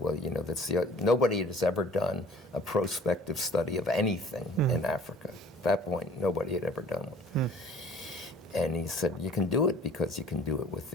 well, nobody has ever done a prospective study of anything in Africa. At that point, nobody had ever done one. And he said, you can do it because you can do it with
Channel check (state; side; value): normal; both; correlation 0.51